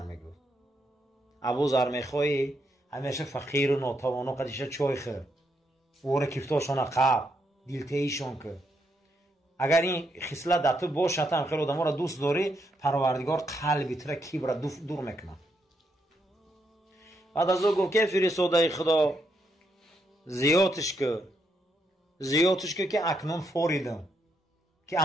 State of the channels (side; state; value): both; normal; correlation 0.79